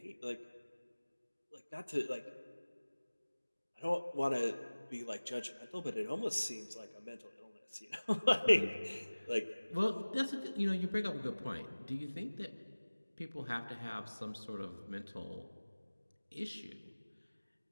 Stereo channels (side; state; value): both; inverted; correlation -1.00